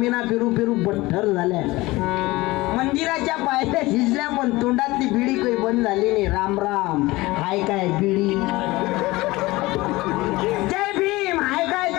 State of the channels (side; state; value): right; quieter; 20.3 dB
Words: पेरू पेरू बठ्ठर झाल्या. मंदिराच्या पायऱ्या शिजल्या पण तोंडातली बिडी काही बंद झाली नाही. राम राम हाय काय बिडी. जय भीम हाय काय